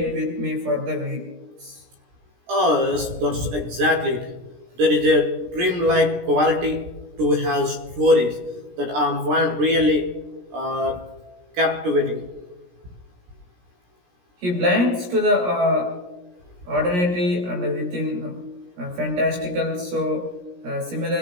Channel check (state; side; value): late; left; 17 ms